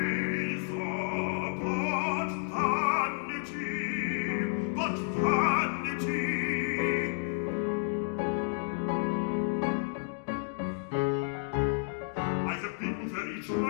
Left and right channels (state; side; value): silent; right; 57 dB below the other